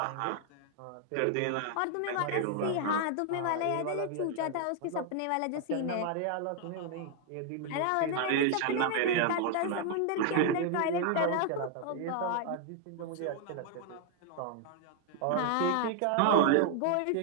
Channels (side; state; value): both; different; correlation 0.00